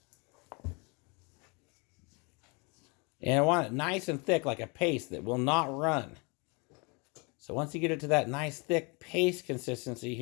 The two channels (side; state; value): right; quieter; 31.0 dB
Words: And I want it nice and thick like a paste that will not run. So once you get it to that nice thick paste consistency